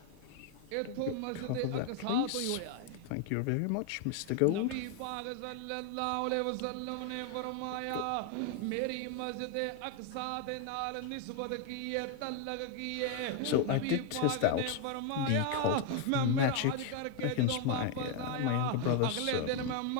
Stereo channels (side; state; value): both; different; correlation 0.01